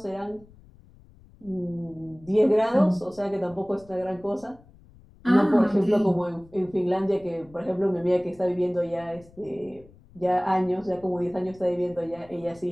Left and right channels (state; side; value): noise; left; rumble, 25 dB below the sound